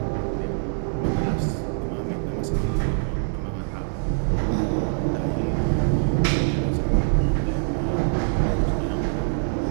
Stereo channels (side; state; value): left; silent; 62 dB below the other